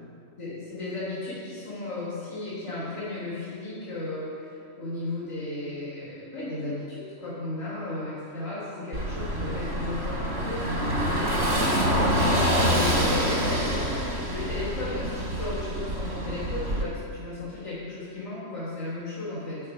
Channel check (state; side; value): late; left; 3.1 ms